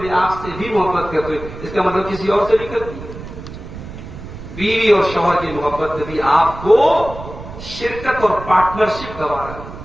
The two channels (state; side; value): noise; right; rumble, 12 dB below the sound